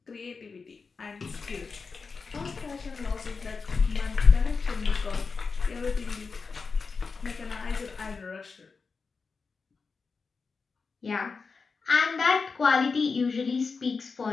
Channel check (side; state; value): right; quieter; 4.8 dB